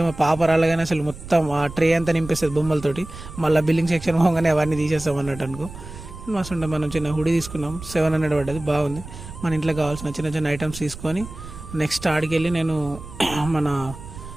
మా పాప రాలేగానే అసలు మొత్తం ఆ ట్రే అంతా నింపేస్తుంది బొమ్మలతోటి. మళ్ళీ బిల్లింగ్ సెక్షన్ పోగానే అవన్నీ తీసేస్తాం అన్నట్టు అనుకో. మస్తు ఉండే. మనం చిన్న హుడీ తీసుకున్నాం, 700 పడ్డది, బాగుంది. మన ఇంట్లో కావాల్సిన చిన్న చిన్న ఐటమ్స్ తీసుకొని నెక్స్ట్ ఆడికి వెళ్ళి నేను మన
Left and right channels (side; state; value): right; noise; rumble, 13 dB below the sound